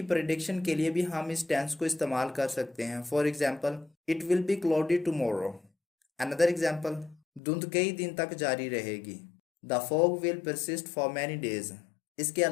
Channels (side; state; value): right; drops out; at 7.4 s